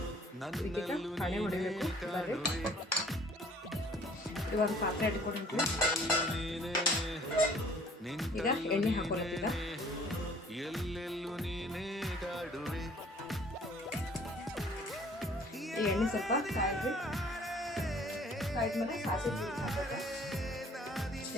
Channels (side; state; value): both; normal; correlation 0.54